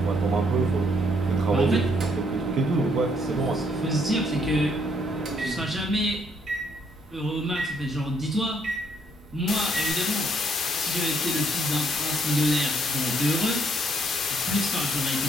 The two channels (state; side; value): normal; both; correlation 0.69